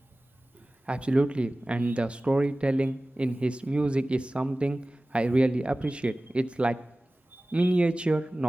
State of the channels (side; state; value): both; normal; correlation 0.97